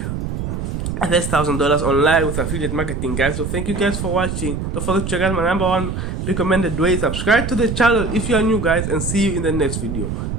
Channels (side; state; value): right; noise; rumble, 4 dB below the sound